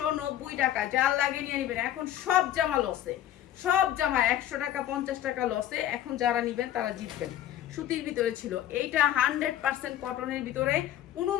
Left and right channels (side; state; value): right; quieter; 12.0 dB